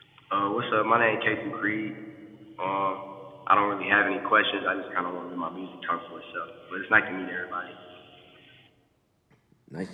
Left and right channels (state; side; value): identical; both; correlation 1.00